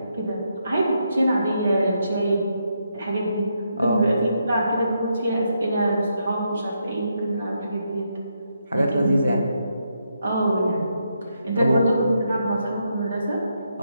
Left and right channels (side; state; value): both; inverted; correlation -0.80